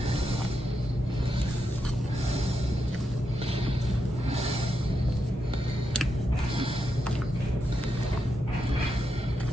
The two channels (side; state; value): both; normal; correlation 0.85